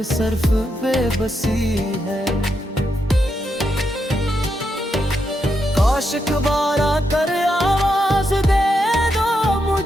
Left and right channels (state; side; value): normal; both; correlation 0.83